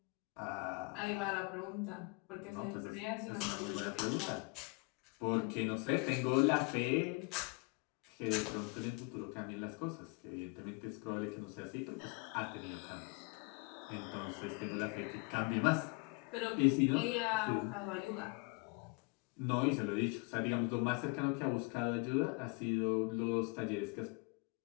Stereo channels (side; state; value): right; quieter; 30.7 dB